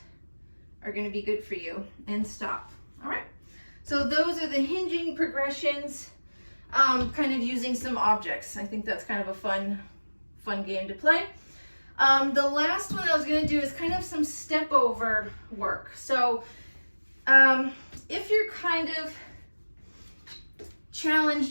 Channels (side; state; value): both; inverted; correlation -1.00